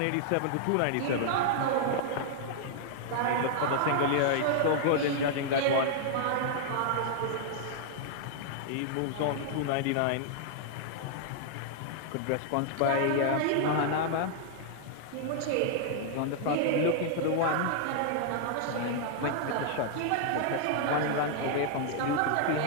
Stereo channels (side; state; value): both; different; correlation -0.01